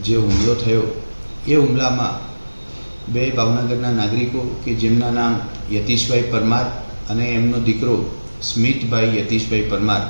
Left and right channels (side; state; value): both; inverted; correlation -1.00